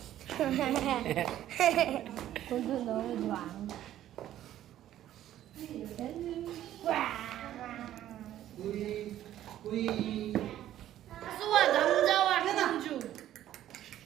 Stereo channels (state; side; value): quieter; left; 12.4 dB